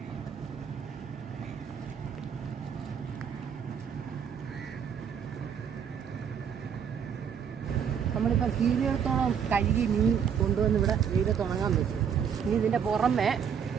നമ്മളിപ്പോൾ കീരിയിടത്തോളം കഴുകി മീൻ കൊണ്ടുവന്ന് ഇവിടെ വെയിലത്തുണങ്ങാൻ വെച്ചു. ഇനി ഇതിൻ്റെ പുറമെ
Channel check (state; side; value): quieter; left; 7.6 dB